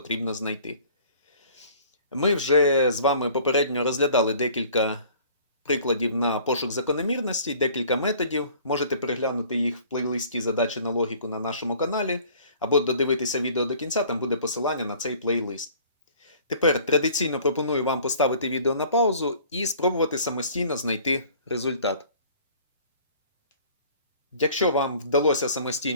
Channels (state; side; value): inverted; both; correlation -0.52